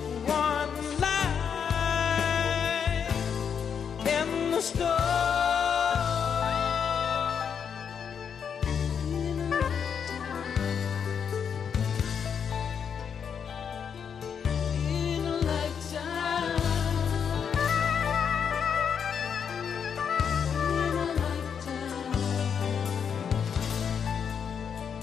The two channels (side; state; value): right; quieter; 7.2 dB